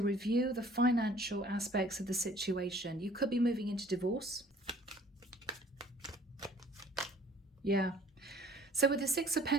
review the financial aspects of the situation. You could be moving into divorce. Yeah. So with the Six of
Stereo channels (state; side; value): normal; both; correlation 0.54